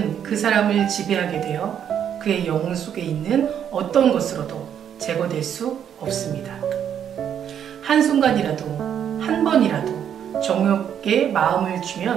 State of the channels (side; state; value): left; quieter; 9.0 dB